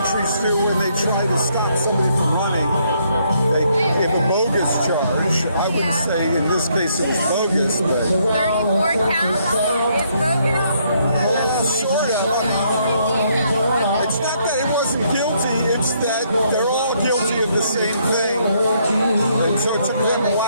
do when they try to stop somebody from running. They give a bogus charge. I would say in this case it was bogus, but 34 counts is bogus? Sort of. It's not that he wasn't guilty, it's that they're all guilty of the same thing. And so it took them a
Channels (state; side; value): inverted; both; correlation -0.71